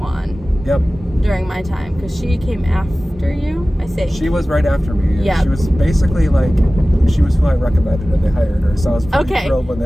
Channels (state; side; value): normal; both; correlation 0.97